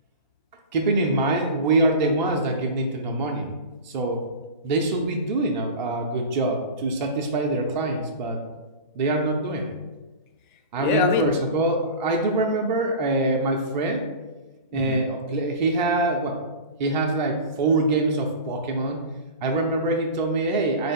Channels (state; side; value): inverted; both; correlation -0.31